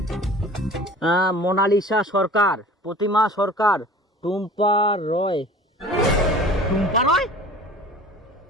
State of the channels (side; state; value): both; normal; correlation 0.43